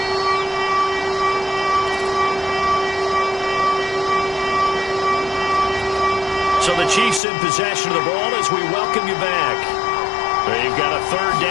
So the Chiefs in possession of the ball as we welcome you back. They've got a 3rd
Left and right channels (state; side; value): drops out; right; at 7.2 s